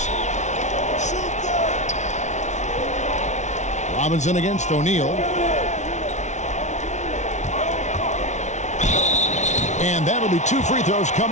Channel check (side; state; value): right; late; 0.34 ms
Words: Robinson against O'Neal. And that'll be 2 free throws